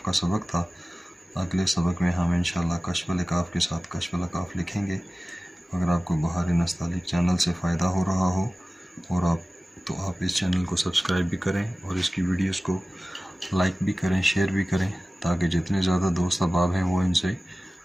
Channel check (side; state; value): both; normal; correlation 0.97